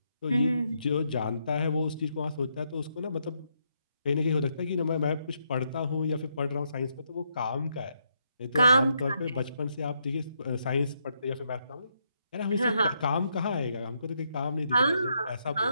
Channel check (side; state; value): both; inverted; correlation -0.77